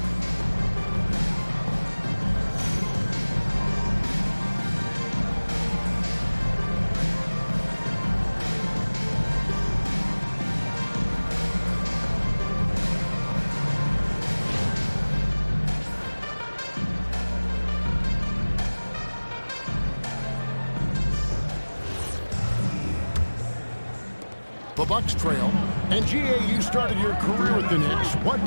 The Bucks trail. And GA, you started your career with the Knicks. What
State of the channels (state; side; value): inverted; both; correlation -1.00